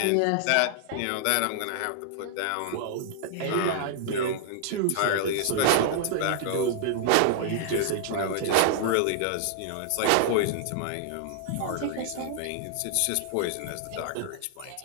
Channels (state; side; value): different; both; correlation -0.01